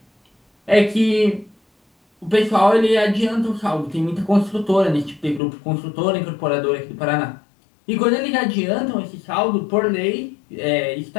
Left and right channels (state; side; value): drops out; right; at 5.4 s